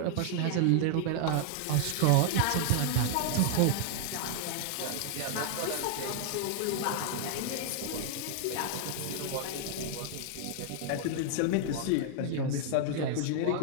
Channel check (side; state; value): both; different; correlation 0.00